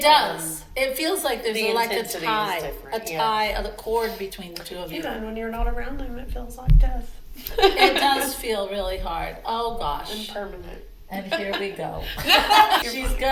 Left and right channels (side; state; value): both; identical; correlation 1.00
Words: does. It feels like there's the like a intensity tie, is different, a cord between the two of you. Yeah, and when you're not around them, it feels like death. It does feel really hard. Oh gosh. And permanent. And here we go. She's